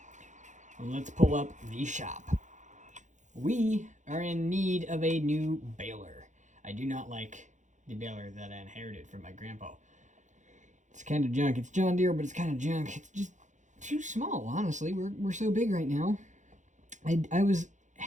let's pull up the shop. We are in need of a new baler. I do not like the baler that I inherited from my grandpa. It's kind of junk. It's John Deere, but it's kind of junk. It's just too small, honestly. We're so big right now. I was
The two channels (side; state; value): left; late; 0.35 ms